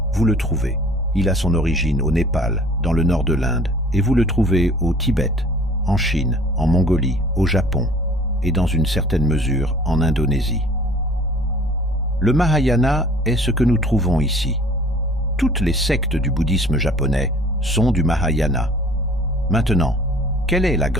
vous le trouvez. Il a son origine au Népal, dans le nord de l'Inde, et vous le trouvez au Tibet, en Chine, en Mongolie, au Japon, et dans une certaine mesure en Indonésie. Le Mahayana est ce que nous trouvons ici. Toutes les sectes du bouddhisme japonais sont du Mahayana. Maintenant, quelle est la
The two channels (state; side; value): normal; both; correlation 0.50